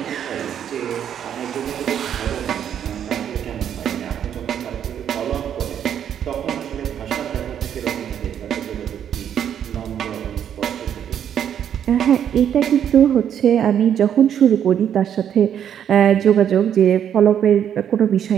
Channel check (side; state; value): left; quieter; 9.2 dB